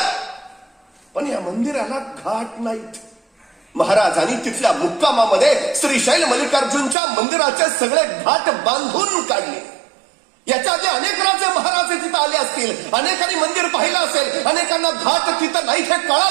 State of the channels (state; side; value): drops out; left; at 7.0 s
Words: पण या मंदिराला घाट नाहीत. महाराजांनी तिथल्या मुक्कामामध्ये श्रीशैल मल्लिकार्जुनच्या मंदिराचे सगळे घाट बांधून काढले. याच्या आधी अनेक राजे महाराज तिथं आले असतील, अनेकांनी मंदिर पाहिलं असेल, अनेकांना घाट तिथं नाही हे